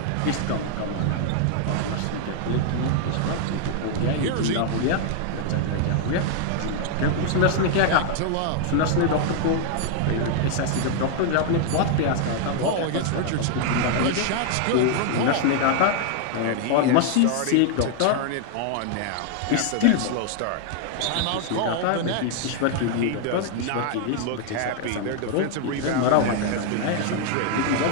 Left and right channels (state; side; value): different; both; correlation 0.00